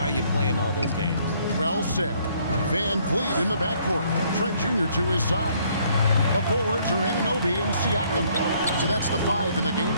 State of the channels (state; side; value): inverted; both; correlation -0.65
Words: you play in all those games. Well said. Van Vliet in the backcourt. Trent Jr. to his side. The forwards are Anunoby and Siakam. So that's the 5 in the game